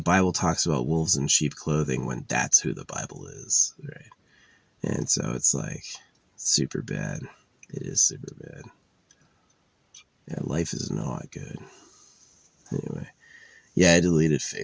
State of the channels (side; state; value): both; identical; correlation 1.00